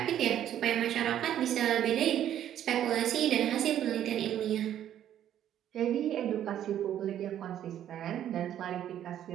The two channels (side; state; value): left; quieter; 10.9 dB